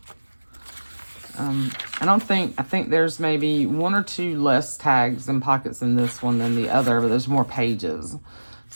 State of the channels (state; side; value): inverted; both; correlation -1.00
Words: I think there's maybe 1 or 2 less tags and pockets in this one than the other, but there's more pages.